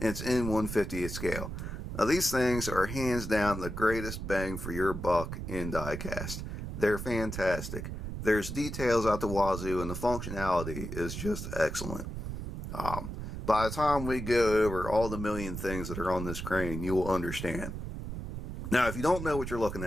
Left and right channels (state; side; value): noise; right; rumble, 6 dB below the sound